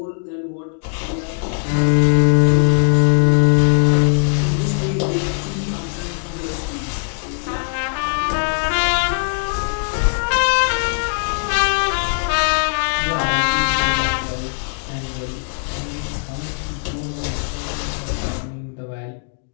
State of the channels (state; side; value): silent; right; 66 dB below the other